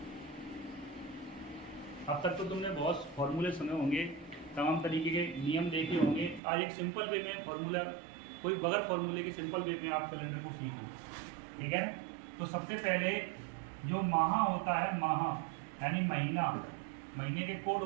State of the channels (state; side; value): drops out; left; at 6.4 s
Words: अब तक तो तुमने बहुत फॉर्मूले सुने होंगे, तमाम तरीके के नियम देखे होंगे। आज एक सिंपल वे में फॉर्मूला, कोई बगैर फॉर्मूले के सिंपल वे में आप कैलेंडर को सीखो, ठीक है। तो सबसे पहले जो माह होता है, माह यानी महीना, महीने के कोड